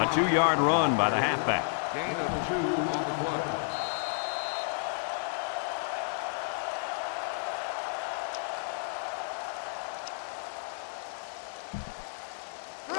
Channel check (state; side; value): silent; right; digital silence